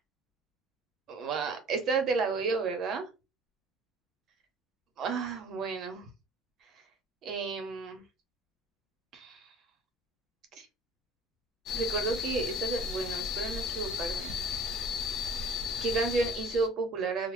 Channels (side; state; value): both; normal; correlation 0.47